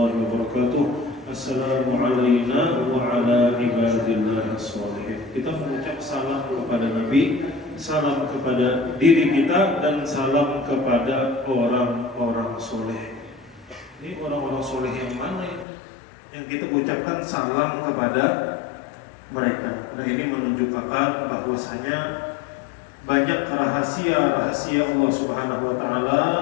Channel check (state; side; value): drops out; right; at 15.7 s